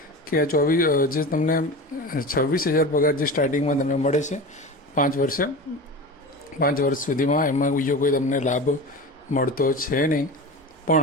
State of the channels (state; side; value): normal; both; correlation 0.29